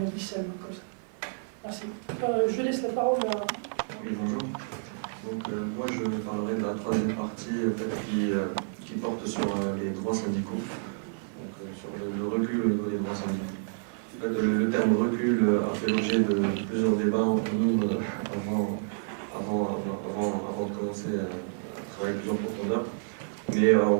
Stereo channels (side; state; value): left; silent; 58 dB below the other